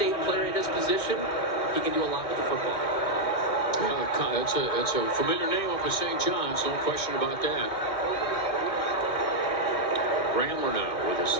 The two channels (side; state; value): right; late; 2.2 ms